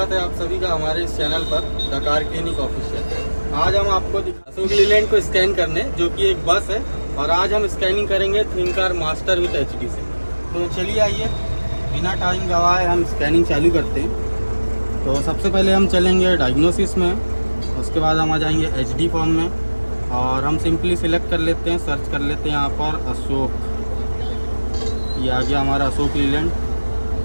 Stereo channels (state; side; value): inverted; both; correlation -1.00